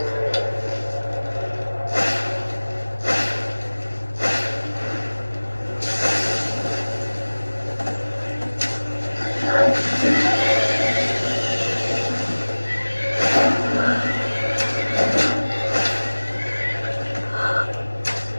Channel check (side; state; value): both; inverted; correlation -1.00